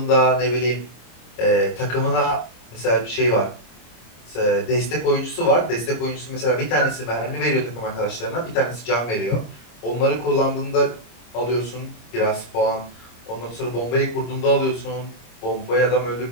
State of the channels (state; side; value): late; right; 26 ms